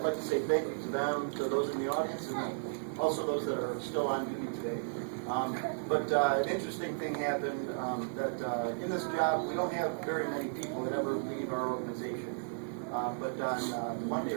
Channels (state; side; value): silent; left; 55 dB below the other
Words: like to say thank you to them, to those in the audience, and also those that are still on duty today. But an interesting thing happened that in this job, we don't have very many people that ever leave our organization. But on Monday